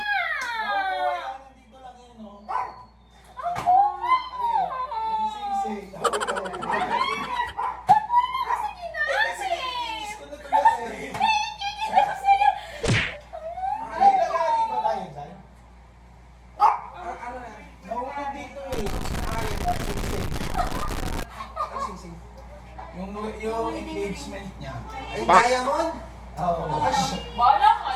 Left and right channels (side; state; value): both; identical; correlation 1.00